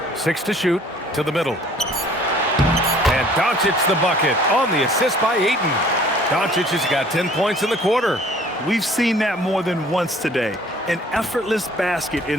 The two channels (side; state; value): both; normal; correlation 0.54